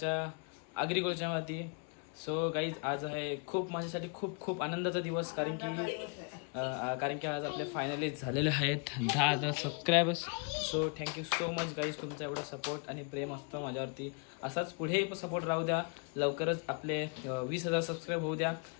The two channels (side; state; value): right; quieter; 34.7 dB